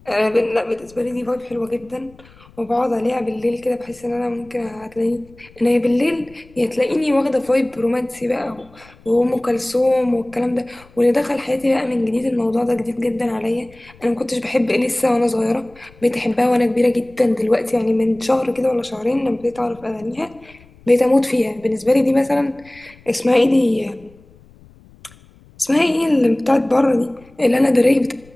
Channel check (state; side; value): noise; left; rumble, 26 dB below the sound